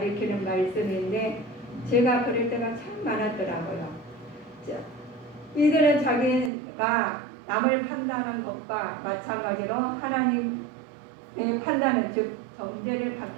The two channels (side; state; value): left; drops out; at 6.5 s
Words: 말씀인데 제가 그럴 때가 참 많았더라고요. 이들은 자기가 남을 판단하는 것과 마찬가지로 하나님의 판단은 즉 정죄를